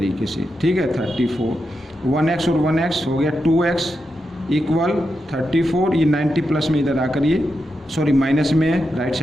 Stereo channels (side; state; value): both; normal; correlation 0.87